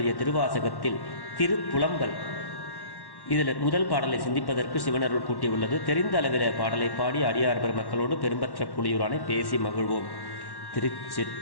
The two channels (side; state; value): right; late; 1.1 ms